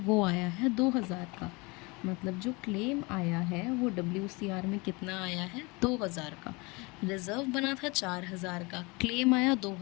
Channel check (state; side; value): quieter; right; 26.6 dB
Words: आया है 2000 का। मतलब जो क्लेम आया है वो WCR में कितना आया है, 2000 का। रिजर्व बना था 4000 का, क्लेम आया